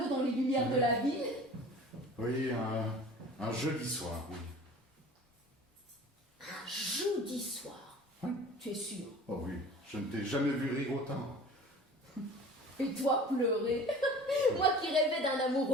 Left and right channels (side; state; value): both; normal; correlation 0.42